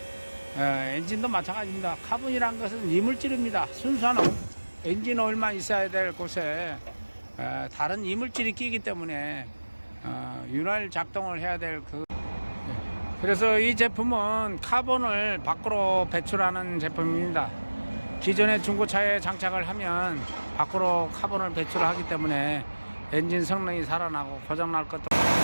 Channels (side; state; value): both; inverted; correlation -1.00